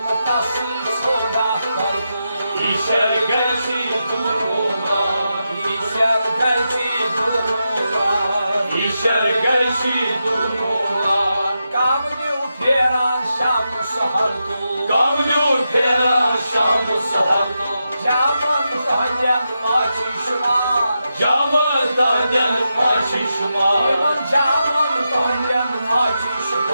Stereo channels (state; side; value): inverted; both; correlation -0.87